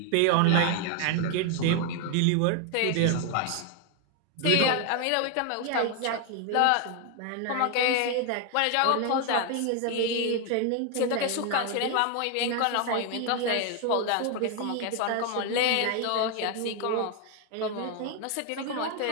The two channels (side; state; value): both; different; correlation 0.01